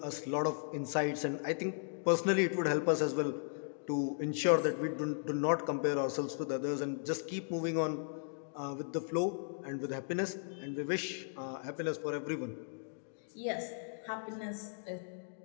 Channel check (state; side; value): silent; right; digital silence